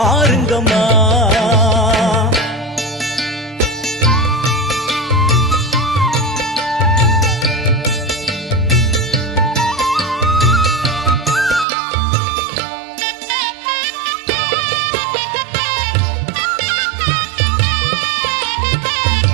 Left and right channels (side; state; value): left; drops out; at 11.7 s